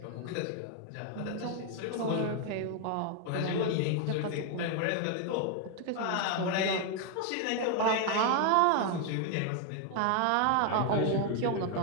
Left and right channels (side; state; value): both; different; correlation 0.00